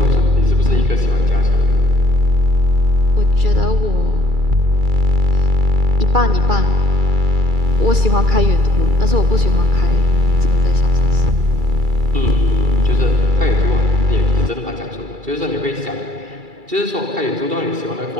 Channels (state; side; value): late; left; 2.3 ms